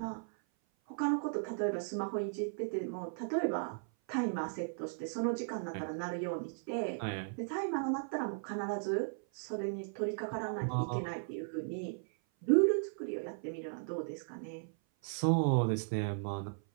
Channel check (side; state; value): left; silent; 54 dB below the other